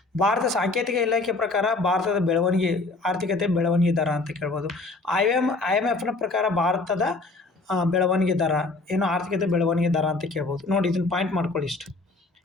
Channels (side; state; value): right; quieter; 3.4 dB